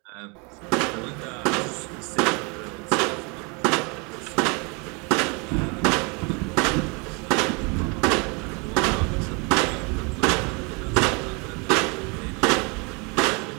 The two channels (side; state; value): left; quieter; 31.0 dB